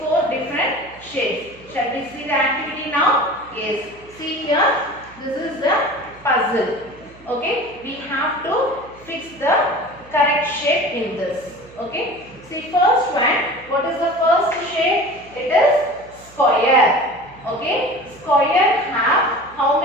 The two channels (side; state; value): right; noise; hum, 23 dB below the sound